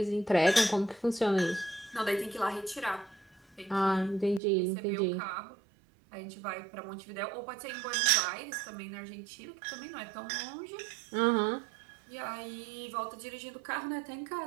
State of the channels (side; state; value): left; drops out; at 4.4 s